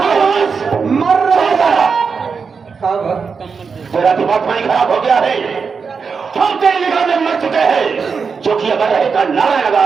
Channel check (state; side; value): quieter; left; 5.5 dB